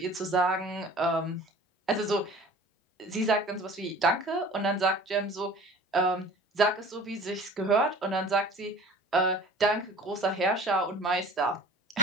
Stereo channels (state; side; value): normal; both; correlation 0.46